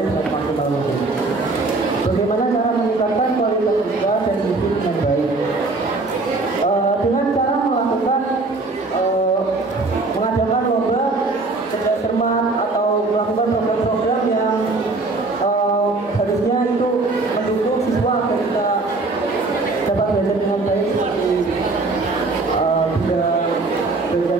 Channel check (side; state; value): left; quieter; 3.4 dB